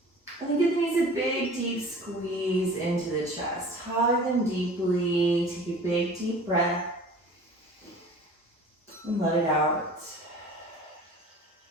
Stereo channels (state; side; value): normal; both; correlation 0.44